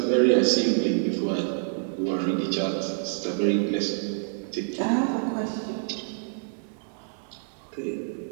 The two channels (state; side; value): silent; left; digital silence